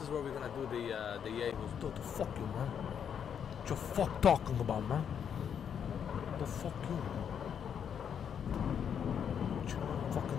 where we're gonna do the Yahoo. What the fuck you, man? What you fuck talking about, man? What the fuck you, man? What you know,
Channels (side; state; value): right; quieter; 8.0 dB